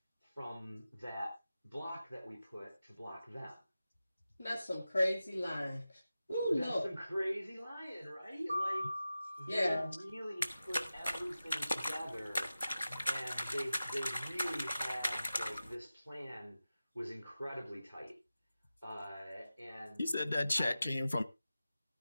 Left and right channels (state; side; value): inverted; both; correlation -0.94